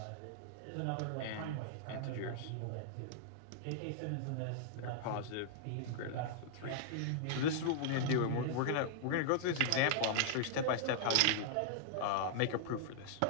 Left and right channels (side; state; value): both; different; correlation -0.01